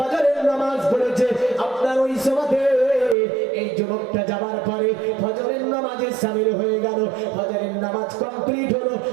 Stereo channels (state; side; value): drops out; left; at 3.2 s